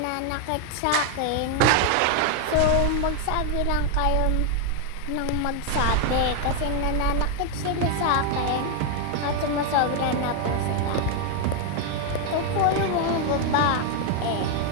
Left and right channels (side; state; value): both; different; correlation 0.00